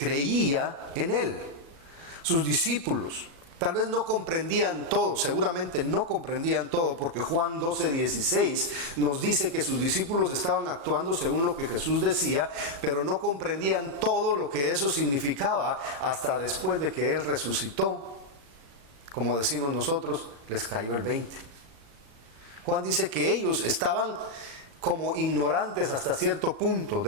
en él, sus discípulos. Tal vez no comprendían todo, seguramente no comprendían todo, porque Juan 12:16 nos dice que sus discípulos estaban actuando según lo que Jesús decía, pero no comprendían todo lo que eso significaba hasta después de que Él resucitó. Como decimos nosotros, les cayó el 20. Juan dice que ellos estaban como ignorantes hasta cierto punto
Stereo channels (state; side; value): late; left; 36 ms